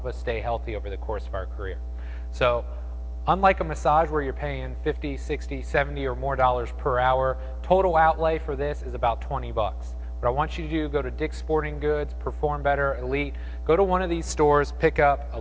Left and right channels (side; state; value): both; identical; correlation 1.00